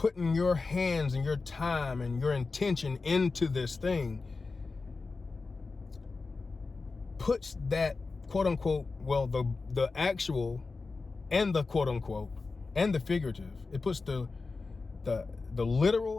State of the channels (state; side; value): quieter; right; 4.0 dB